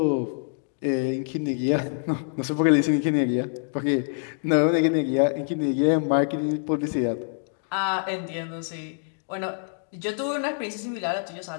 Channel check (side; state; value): right; silent; 61 dB below the other